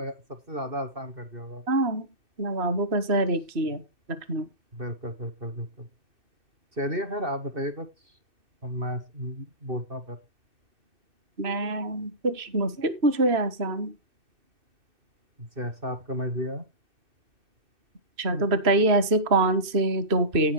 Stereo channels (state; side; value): late; left; 2.6 ms